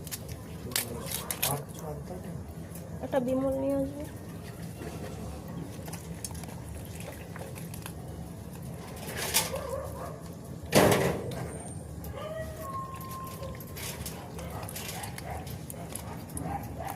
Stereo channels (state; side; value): identical; both; correlation 1.00